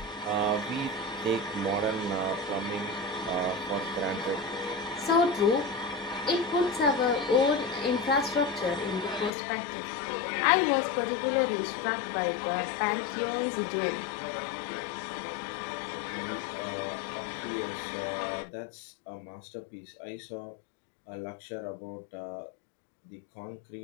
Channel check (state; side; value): drops out; right; at 9.3 s